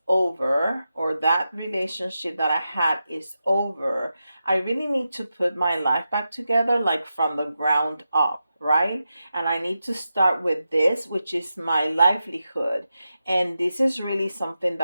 over, or that relationship that I had is over, I really need to put my life back together, like from the ground up, right? And I need to start with this, which is my livelihood. And this is really something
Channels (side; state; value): both; inverted; correlation -0.90